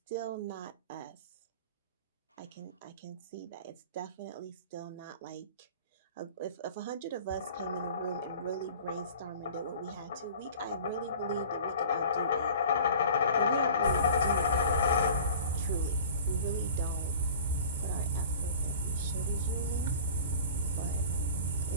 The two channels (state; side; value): inverted; both; correlation -0.42